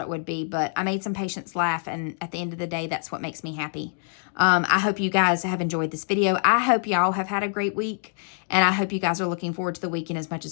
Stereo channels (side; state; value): right; silent; digital silence